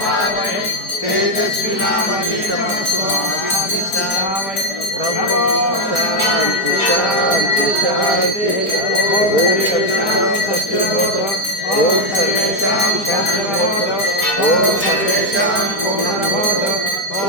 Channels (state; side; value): late; right; 4.6 ms